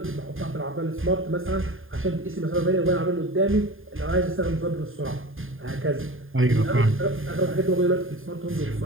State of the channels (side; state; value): left; late; 0.59 ms